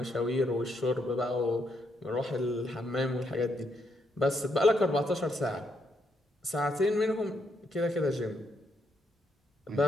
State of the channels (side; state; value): both; normal; correlation 0.77